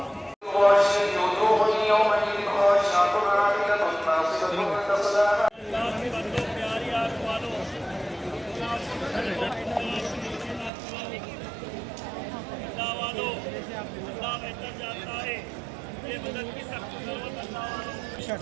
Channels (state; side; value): drops out; left; at 10.7 s